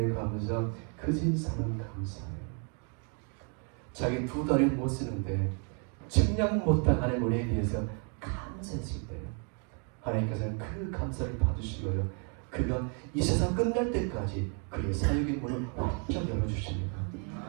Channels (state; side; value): quieter; left; 39.7 dB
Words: 감사, 그진 사는 감사해요. 자기 두 다리 못 쓰는데 측량 못할 하나님의 은혜에 대해서 감사했을 때 하나님께서는 그 감사를 받으시고요, 그가 이 세상 끝날 때까지 그의 사역의 문을 활짝 열어주십니다.